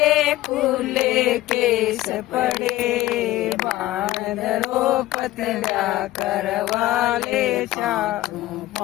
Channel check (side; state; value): right; quieter; 16.2 dB